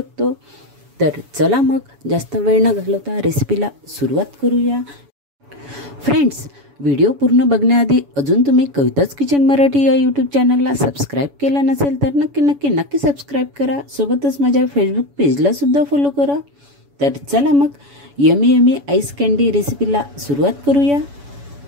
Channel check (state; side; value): late; left; 7.1 ms